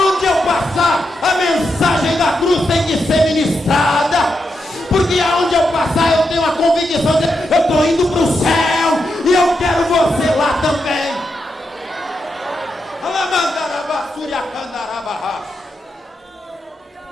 eu passar, a mensagem da cruz tem que ser ministrada. Porque aonde eu passar, eu tenho a convicção de eu estou indo para o céu e eu quero você lá também.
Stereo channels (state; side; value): normal; both; correlation 0.85